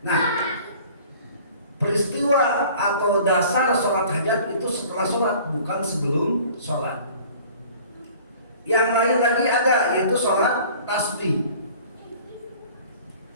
Nah, peristiwa atau dasar sholat hajat itu setelah sholat, bukan sebelum sholat. Yang lain lagi ada, yaitu sholat tasbih.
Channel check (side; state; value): both; inverted; correlation -0.48